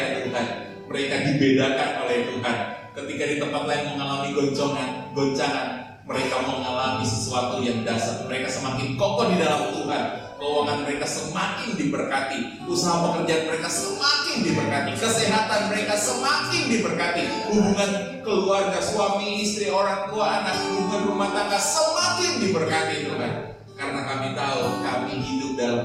Tuhan, mereka dibedakan oleh Tuhan. Ketika di tempat lain mengalami goncangan, mereka mengalami sesuatu yang dahsyat. Mereka semakin kokoh di dalam Tuhan. Keuangan mereka semakin diberkati, usaha pekerjaan mereka semakin diberkati, kesehatan mereka semakin diberkati, hubungan keluarga, suami, istri, orang tua, anak, hubungan rumah tangga semakin diberkati Tuhan. Karena kami tahu kami hidup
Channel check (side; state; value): both; identical; correlation 1.00